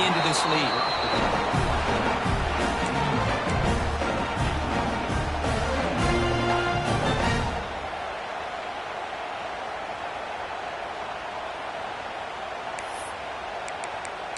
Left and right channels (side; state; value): both; identical; correlation 1.00